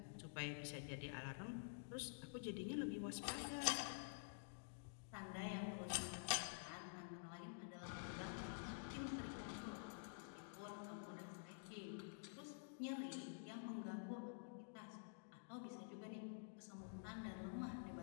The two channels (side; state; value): right; silent; digital silence